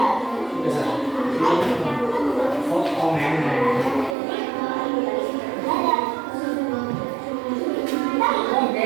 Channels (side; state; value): left; drops out; at 4.2 s